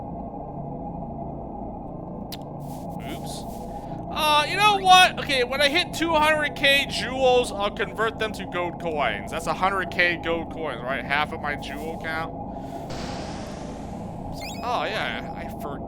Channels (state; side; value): identical; both; correlation 1.00